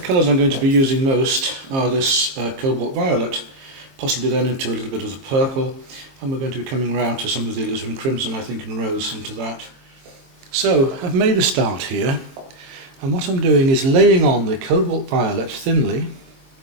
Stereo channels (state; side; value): late; left; 22 ms